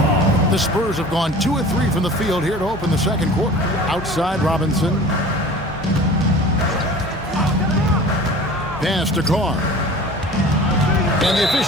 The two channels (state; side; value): normal; both; correlation 0.42